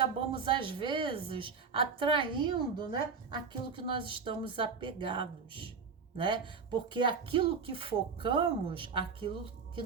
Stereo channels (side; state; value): left; quieter; 5.5 dB